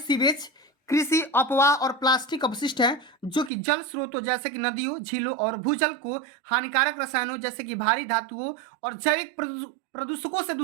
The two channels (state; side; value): drops out; left; at 3.5 s